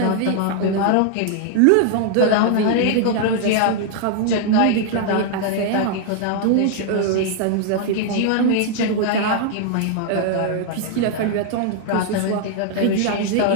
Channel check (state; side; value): different; both; correlation 0.00